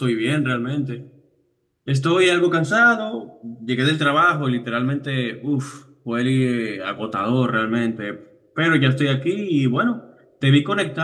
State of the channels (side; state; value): both; identical; correlation 1.00